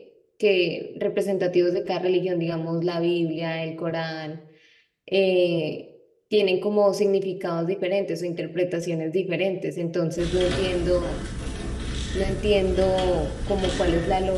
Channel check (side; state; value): both; identical; correlation 1.00